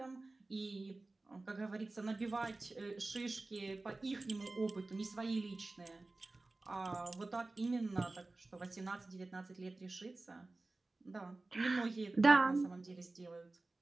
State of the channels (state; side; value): quieter; left; 3.2 dB